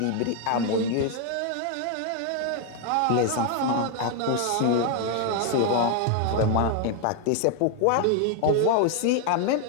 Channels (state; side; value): different; both; correlation 0.01